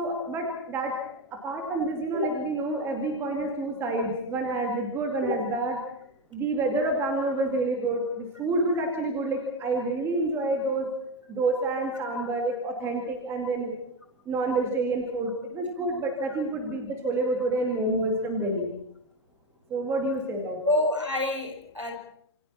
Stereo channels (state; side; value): normal; both; correlation 0.16